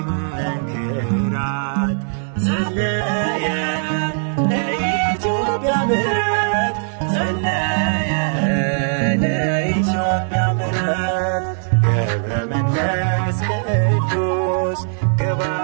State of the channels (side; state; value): left; silent; 62 dB below the other